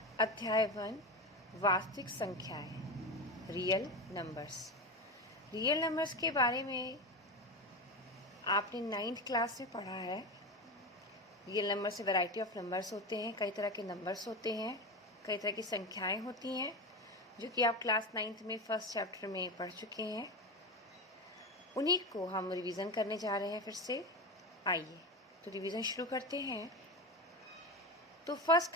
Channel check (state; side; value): normal; both; correlation 0.21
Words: अध्याय 1 वास्तविक संख्याएं, रियल नंबर्स। रियल नंबर्स के बारे में आपने 9th क्लास में पढ़ा है। रियल नंबर से वैरायटी ऑफ नंबर्स होते हैं, कई तरह के नंबर्स होते हैं, कई तरह की संख्याएं होती हैं, जो कि आप क्लास 9th में फर्स्ट चैप्टर में पढ़ चुके हैं। उन्हीं को हम रिवीजन करने जा रहे हैं फिर से। आइए तो रिवीजन शुरू करते हैं। तो first